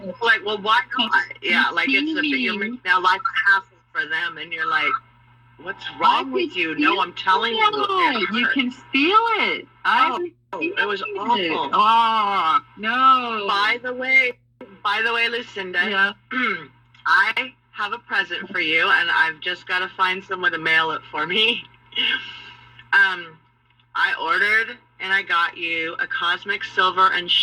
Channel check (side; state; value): both; identical; correlation 1.00